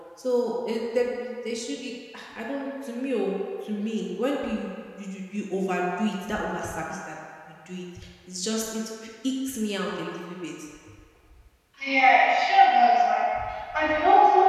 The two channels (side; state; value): both; identical; correlation 1.00